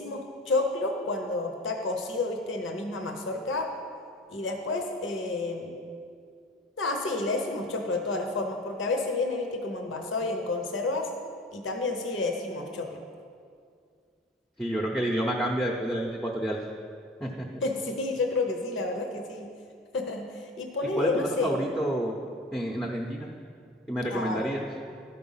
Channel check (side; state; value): both; normal; correlation 0.39